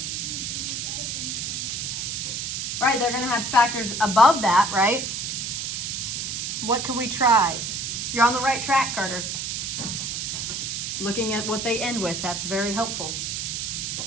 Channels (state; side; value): noise; right; hiss, 3 dB below the sound